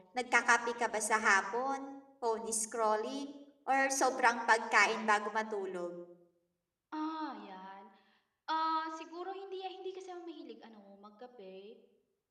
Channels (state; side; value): identical; both; correlation 1.00